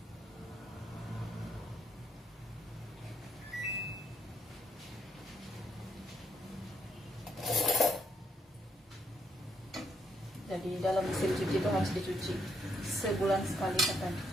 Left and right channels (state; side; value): normal; both; correlation 0.74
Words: Jadi dalam mesin cuci itu harus dicuci sebulan sekali